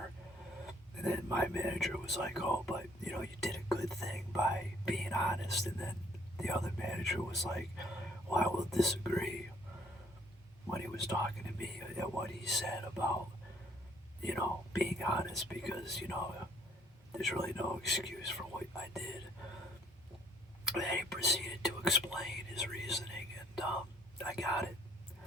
manager was like, oh, but you did a good thing by being honest. And then the other manager was like, well, I will disagree when he was talking to me at what he said about, being honest because, there's really no excuse for what I did. And he proceeded to explain his reasoning, and I got it.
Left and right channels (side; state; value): both; normal; correlation 0.62